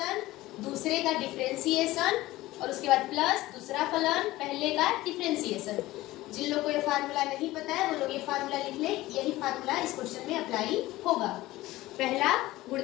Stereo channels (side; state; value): right; quieter; 17.6 dB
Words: दूसरे का डिफरेंशिएशन और उसके बाद प्लस दूसरा फलन पहले का डिफरेंशिएशन। जिन लोगों को ये फार्मूला नहीं पता है वो लोग ये फार्मूला लिख ले, यही फार्मूला इस क्वेश्चन में अप्लाई होगा। पहला